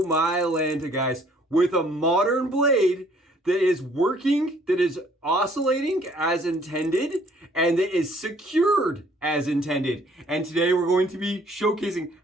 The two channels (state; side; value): normal; both; correlation 0.60